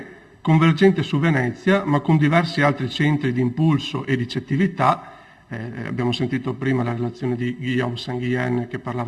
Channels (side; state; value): both; identical; correlation 1.00